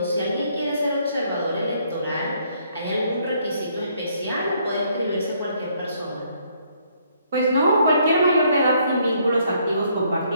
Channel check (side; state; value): both; inverted; correlation -0.68